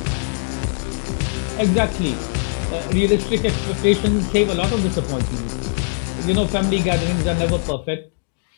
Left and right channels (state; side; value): silent; right; digital silence